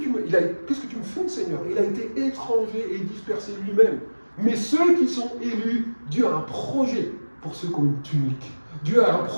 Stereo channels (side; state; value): both; inverted; correlation -1.00